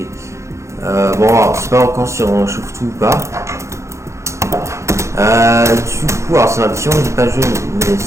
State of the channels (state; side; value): late; left; 0.14 ms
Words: Bon, alors, c'est pas encore si on chauffe tout ou pas. Du coup, alors c'est ma petit j'ai pas joué, mais